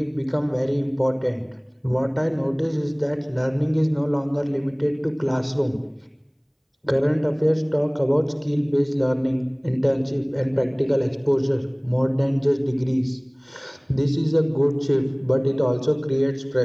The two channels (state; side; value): identical; both; correlation 1.00